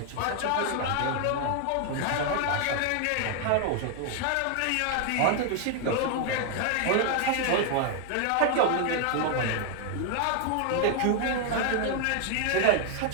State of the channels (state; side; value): different; both; correlation 0.00